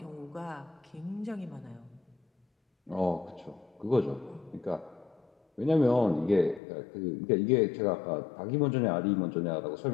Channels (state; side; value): drops out; right; at 6.6 s